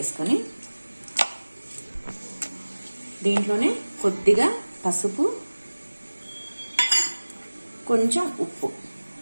దీంట్లోనే కొద్దిగా పసుపు, కొంచెం ఉప్పు,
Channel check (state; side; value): inverted; both; correlation -1.00